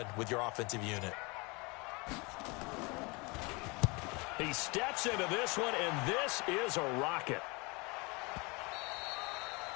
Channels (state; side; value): quieter; right; 27.8 dB